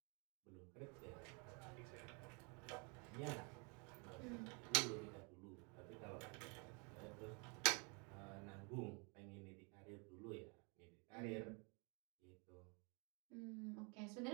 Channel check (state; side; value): quieter; left; 33.5 dB